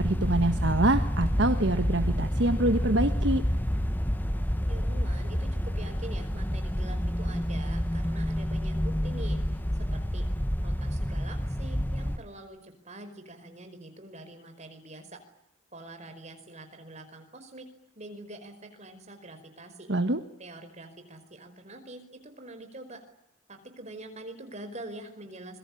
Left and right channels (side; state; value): both; normal; correlation 0.74